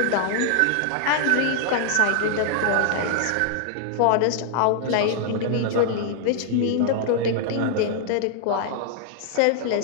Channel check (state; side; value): different; both; correlation -0.01